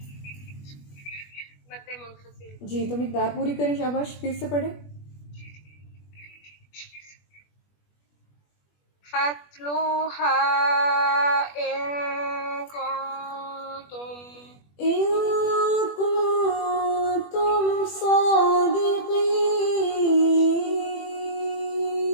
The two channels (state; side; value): late; right; 21 ms